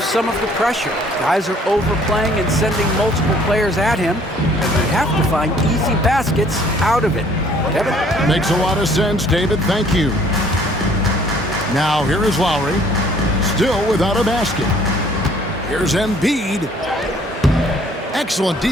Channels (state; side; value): normal; both; correlation 0.58